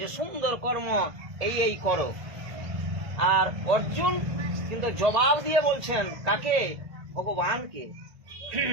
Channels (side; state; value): left; late; 1.8 ms